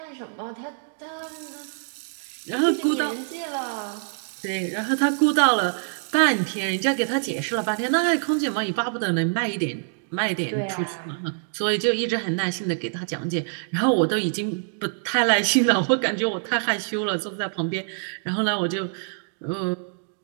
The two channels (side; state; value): left; silent; digital silence